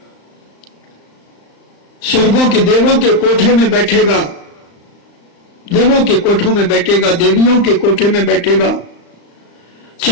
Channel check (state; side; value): late; right; 35 ms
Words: स्वर्गों के देवों के कोठे में बैठेगा, देवों के कोठों में बैठेगा, देवियों के कोठे में बैठेगा।